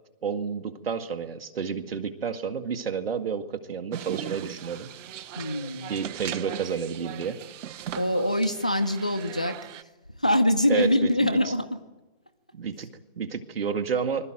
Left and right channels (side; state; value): both; inverted; correlation -0.54